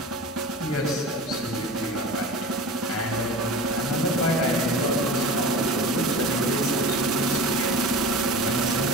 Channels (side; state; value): both; normal; correlation 0.33